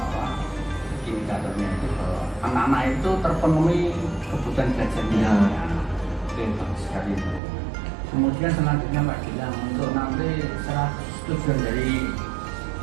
indikatornya itu bahwa anak-anak itu terpenuhi kebutuhan belajarnya. Ya. Oke, bagus sekali. Kemudian selanjutnya Pak Gilang, untuk nanti tujuan dari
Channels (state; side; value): drops out; left; at 7.4 s